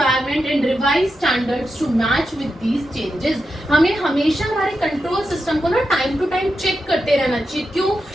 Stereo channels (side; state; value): both; normal; correlation 0.88